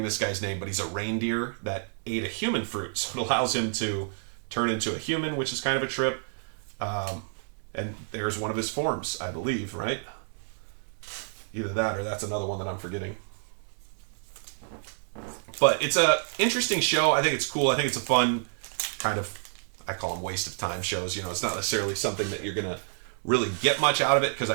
this guy's name, but he's a reindeer that ate a human fruit, so it allows him to turn into a human, which is kind of a trip. And there's one of his forms, I believe, right? Either that or that's another one that I'm forgetting. But it's a interesting show. I think it's cool. I think it's a fun kind of, I call them waste of time shows. It's not necessarily something that you're gonna really get much out of it, because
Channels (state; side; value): silent; left; digital silence